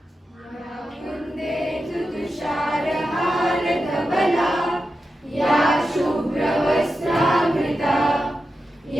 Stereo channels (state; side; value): normal; both; correlation 0.90